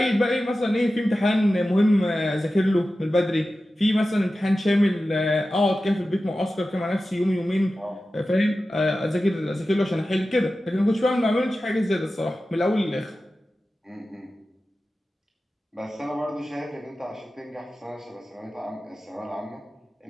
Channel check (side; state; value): both; normal; correlation 0.94